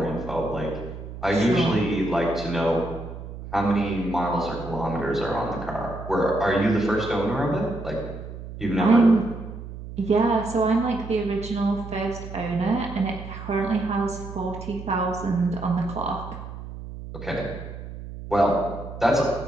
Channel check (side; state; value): right; noise; hum, 11 dB below the sound